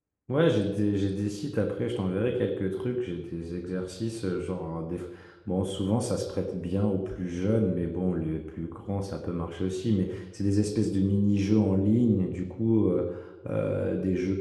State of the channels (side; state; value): both; identical; correlation 1.00